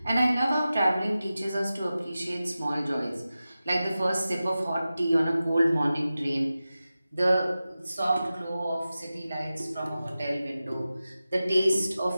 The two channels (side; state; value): both; inverted; correlation -0.94